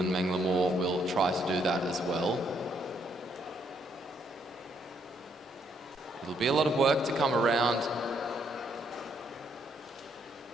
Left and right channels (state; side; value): normal; both; correlation 0.72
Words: Menglemore will try to do that as well. It'll be a lot of work to come around